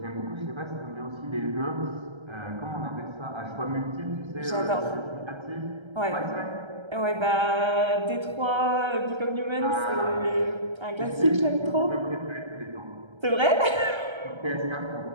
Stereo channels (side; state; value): left; late; 1.3 ms